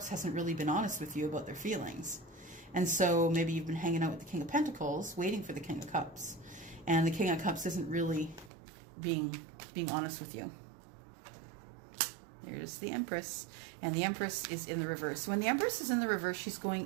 hasn't really been honest with you about their feelings. And so maybe you've been hanging out with the King of Pentacles, waiting for the King of Cups. And the King of Cups isn't really being honest with you. There's the Empress, and the Empress is in the reverse. So when the Empress is in the reverse, she's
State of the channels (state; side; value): drops out; left; at 8.5 s